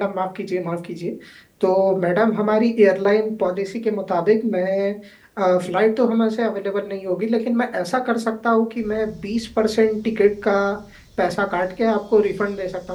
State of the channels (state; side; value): identical; both; correlation 1.00